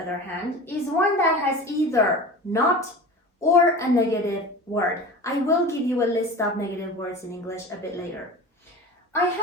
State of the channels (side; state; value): both; normal; correlation 0.34